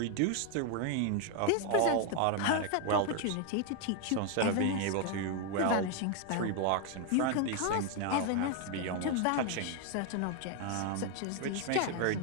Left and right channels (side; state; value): both; different; correlation 0.01